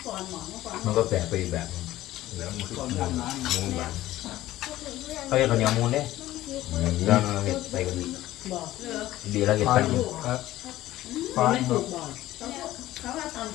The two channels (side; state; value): right; quieter; 15.3 dB